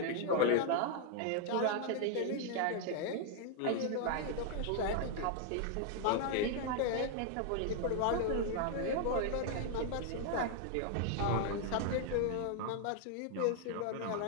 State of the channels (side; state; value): both; different; correlation 0.00